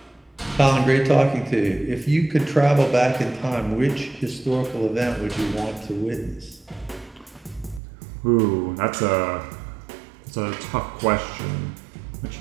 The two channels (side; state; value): left; drops out; at 7.8 s